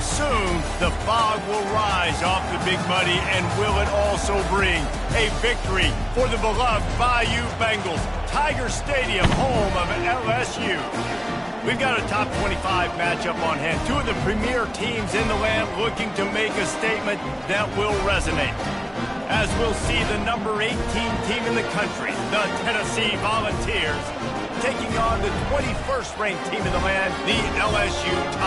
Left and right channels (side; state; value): both; identical; correlation 1.00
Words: the fog will rise off the Big Muddy, and will it also bring a victory for the beloved Bayou Bengals. Tiger Stadium, home of LSU. We've got a top 25 matchup on hand. Two of the premier teams in the land looking to make a statement that will resonate. As we'll see the number 18 team in the country, the Tennessee Volunteers, taking on the 21st ranked team in the land, the LSU